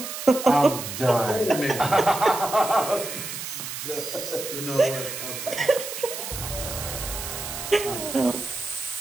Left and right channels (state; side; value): noise; right; hiss, 7 dB below the sound